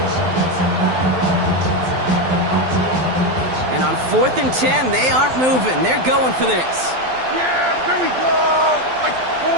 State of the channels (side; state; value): left; late; 12 ms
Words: And on 4th and 10, they aren't moving. They're going for this. Yeah, here we go.